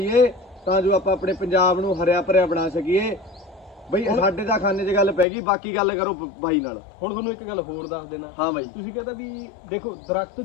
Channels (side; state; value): right; drops out; at 5.2 s